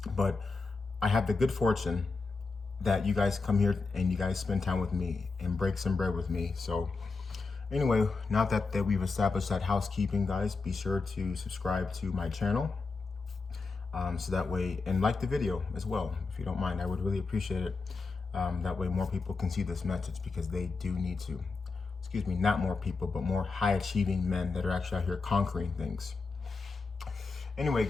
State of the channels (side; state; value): right; quieter; 4.2 dB